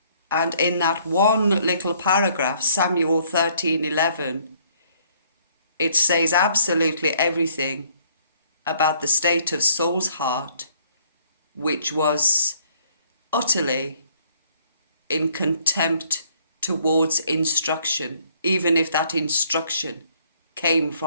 And in that one little paragraph, Samuel 13:11, it says absolutely everything about the state of Saul's heart, which was utterly in contempt towards instruction, even if that instruction came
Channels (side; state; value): both; inverted; correlation -0.63